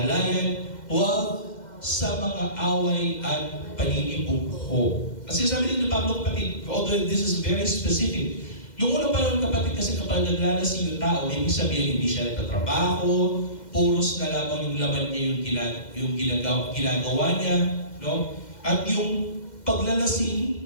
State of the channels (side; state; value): right; late; 2.1 ms